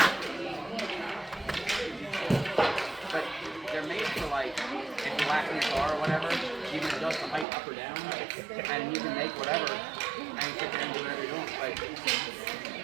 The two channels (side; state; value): left; drops out; at 7.5 s